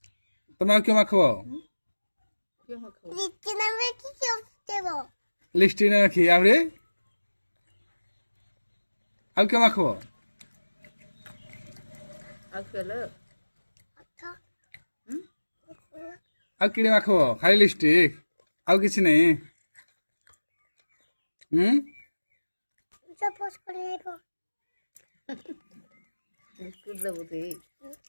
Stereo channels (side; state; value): both; inverted; correlation -1.00